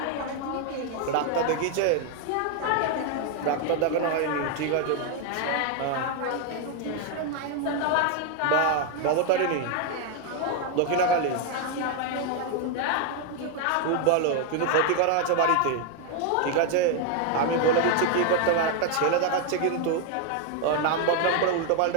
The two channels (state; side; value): different; both; correlation 0.01